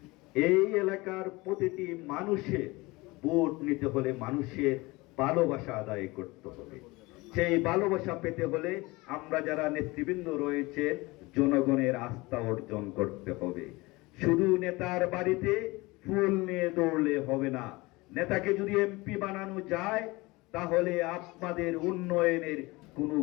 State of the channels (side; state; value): right; quieter; 22.6 dB